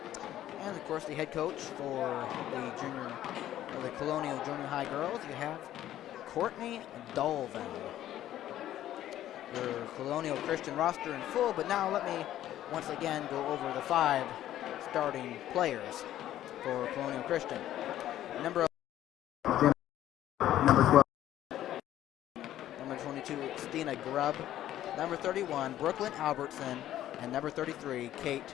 And of course, the head coach for the Colonial Junior High girls, you have Courtney Dolvin. Your Colonial Christian roster in full, but now let me once again go over the 5 starting players for Colonial Christian. Number 12, number 22, Stina Grubb. Number 31, Brooklyn Albertson. And number 33, Kate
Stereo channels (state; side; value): quieter; right; 12.6 dB